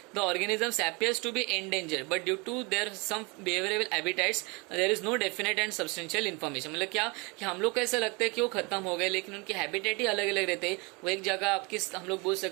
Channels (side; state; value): left; quieter; 29.0 dB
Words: the organisms appears to be endangered but due to their some behavioural habitats there is no definite and substantial information. मतलब क्या कि हम लोग को ऐसा लगता है कि वो खत्म हो गए, लेकिन उनके हैबिटेट ही अलग अलग रहते हैं। वो एक जगह आपकी हम लोग बोल